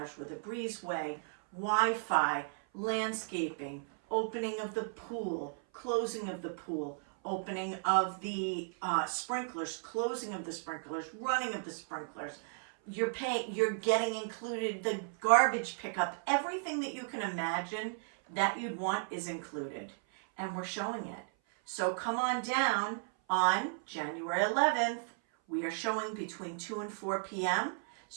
with a breezeway, Wi-Fi, landscaping, opening of the pool, closing of the pool, opening of the sprinklers, closing of the sprinklers, running of the sprinklers. You're getting included the garbage pickup. Everything that you can imagine that you'd want is included, and we're showing it. So come on down on January 11th. We are showing between 2 and 4 p.m.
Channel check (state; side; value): silent; left; 55 dB below the other